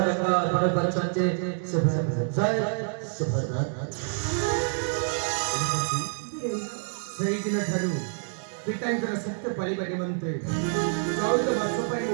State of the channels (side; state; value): left; silent; digital silence